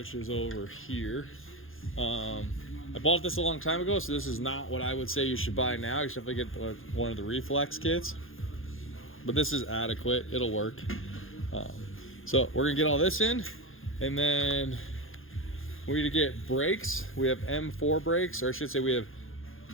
is over here. I bought this a long time ago, so this is not what I would say you should buy now. You should definitely get one of the reflex kits, but this is adequate. It'll work. So we're gonna get all this in, and then we need to get brakes. We have M4 brakes, or I should say we have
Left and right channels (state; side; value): late; right; 0.60 ms